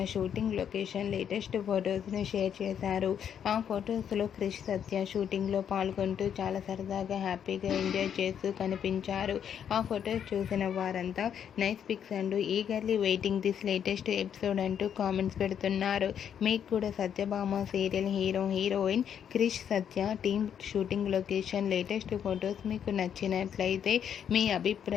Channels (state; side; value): quieter; right; 8.6 dB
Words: షూటింగ్ లొకేషన్ లేటెస్ట్ ఫొటోస్ను షేర్ చేశారు. ఆ ఫొటోస్లో క్రిష్ సత్య షూటింగ్లో పాల్గొంటూ చాలా సరదాగా హ్యాపీగా ఎంజాయ్ చేస్తూ కనిపించారు. ఆ ఫొటోస్ చూసిన వారంతా nice pics and eagerly waiting this latest episode అంటూ కామెంట్స్ పెడుతున్నారు. మీకు కూడా Satyabhama serial heroine Krish Satya team shooting location latest photos మీకు నచ్చినట్లయితే మీ